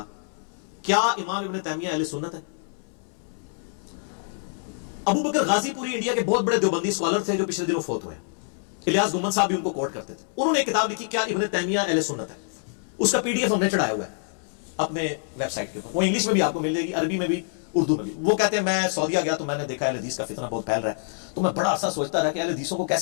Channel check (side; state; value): right; silent; 61 dB below the other